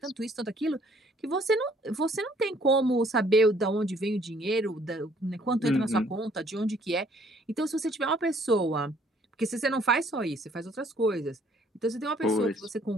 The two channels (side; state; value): both; normal; correlation 0.62